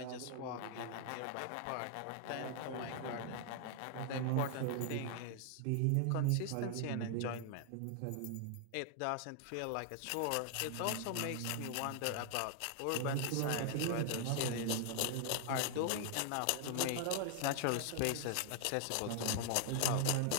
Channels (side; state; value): both; different; correlation 0.00